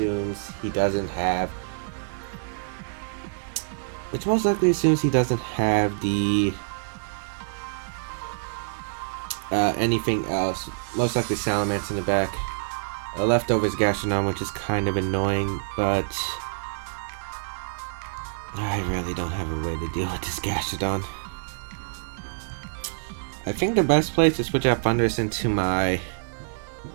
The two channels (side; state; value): left; silent; 61 dB below the other